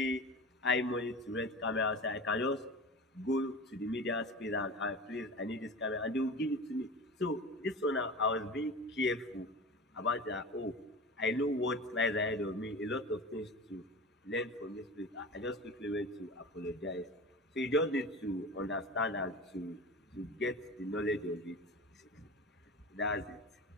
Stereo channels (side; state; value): both; normal; correlation 0.32